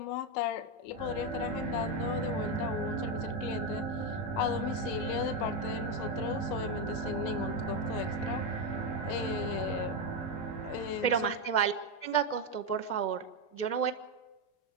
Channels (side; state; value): right; late; 19 ms